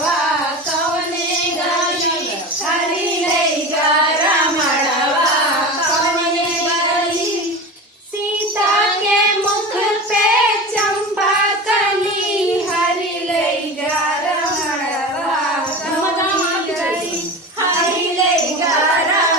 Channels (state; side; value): normal; both; correlation 0.29